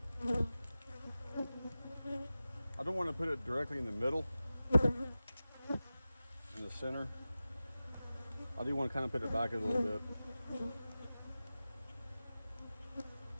go. I don't want to put it directly in the middle, in the center. I do want to kind of put it back a little bit.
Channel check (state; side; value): inverted; both; correlation -0.96